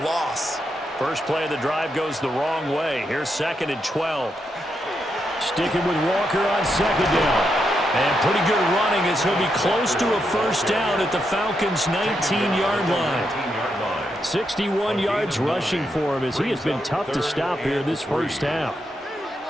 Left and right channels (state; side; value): normal; both; correlation 0.82